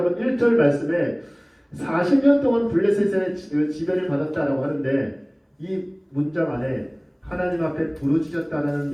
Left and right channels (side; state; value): both; identical; correlation 1.00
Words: 1절 말씀에 40년 동안 블레셋의 지배를 받았다라고 하는데 이 문장 안에 하나님 앞에 부르짖었다라는